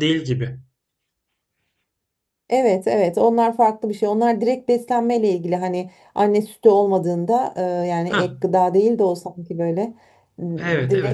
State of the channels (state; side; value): identical; both; correlation 1.00